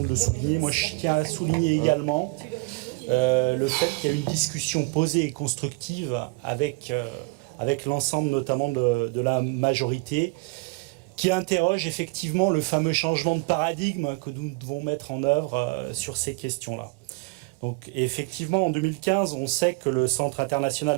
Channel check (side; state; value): left; quieter; 28.1 dB